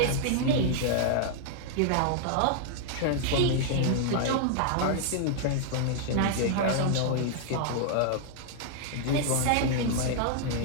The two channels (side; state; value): both; different; correlation -0.01